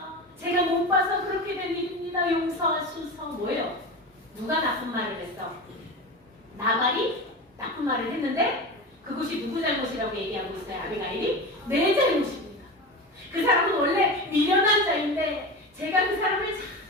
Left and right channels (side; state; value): both; normal; correlation 0.26